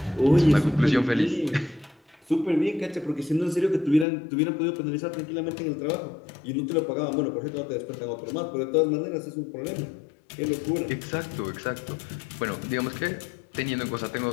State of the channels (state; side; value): drops out; right; at 4.0 s